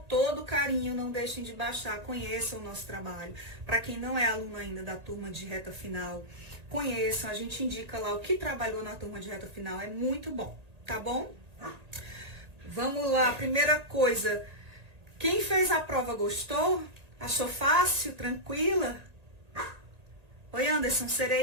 carinho, não deixem de baixar, conheçam o nosso trabalho. Para quem não é aluno ainda da turma de reta final, conheçam, a gente indica lá o que trabalhou na turma de reta final, é muito bom, tá bom? Vamos lá, primeira coisa, quem fez a prova gostou? Achou fácil, tranquila? Oi, Anderson,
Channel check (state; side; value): late; left; 1.9 ms